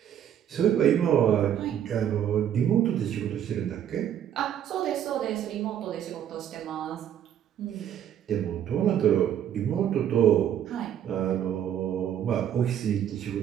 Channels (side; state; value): left; quieter; 10.0 dB